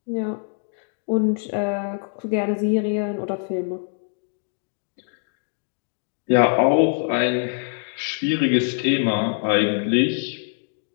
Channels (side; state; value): right; silent; 57 dB below the other